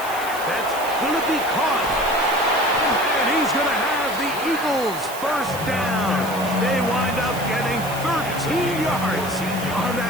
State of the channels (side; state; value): right; noise; hiss, 12 dB below the sound